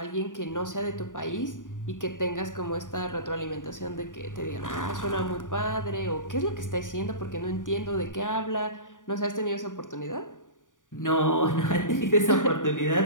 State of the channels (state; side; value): late; right; 0.88 ms